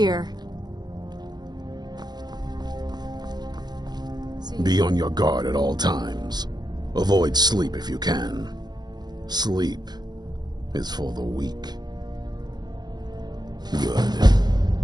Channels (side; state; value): left; late; 0.20 ms